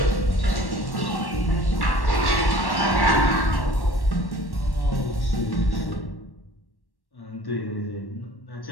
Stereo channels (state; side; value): late; right; 1.1 ms